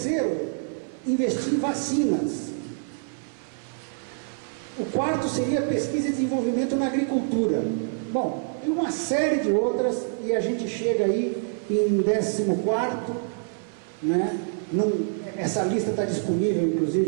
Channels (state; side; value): silent; left; 61 dB below the other